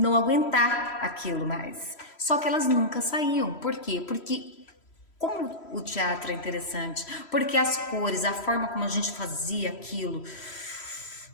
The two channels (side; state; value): right; late; 3.1 ms